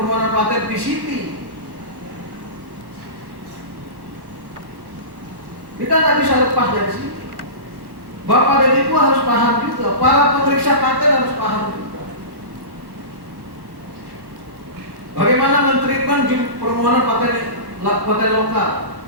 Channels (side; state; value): left; late; 1.2 ms